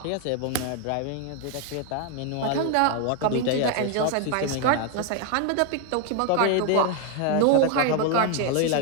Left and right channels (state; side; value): different; both; correlation 0.01